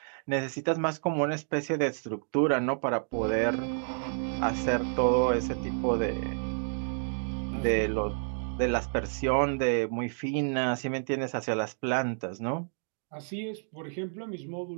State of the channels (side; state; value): left; silent; digital silence